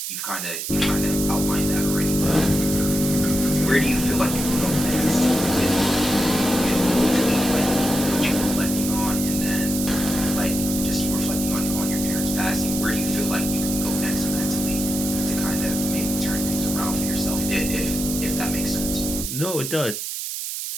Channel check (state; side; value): noise; right; hiss, 5 dB below the sound